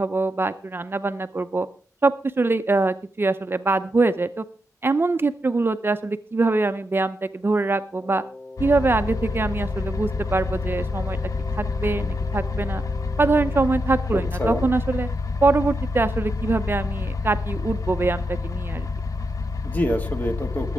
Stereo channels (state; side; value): normal; both; correlation 0.85